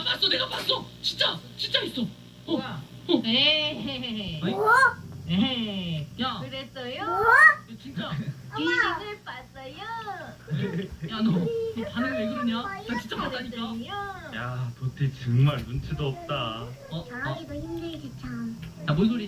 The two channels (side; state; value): both; identical; correlation 1.00